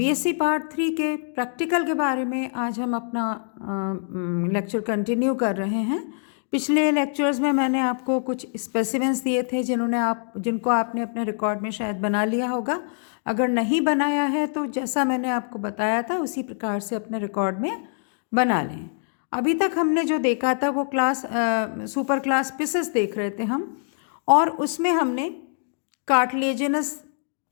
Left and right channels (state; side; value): silent; right; digital silence